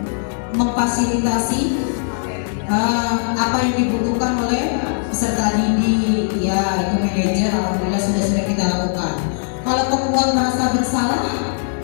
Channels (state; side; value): silent; right; digital silence